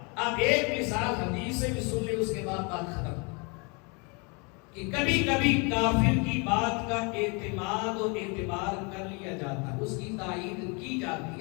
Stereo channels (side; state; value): right; quieter; 31.6 dB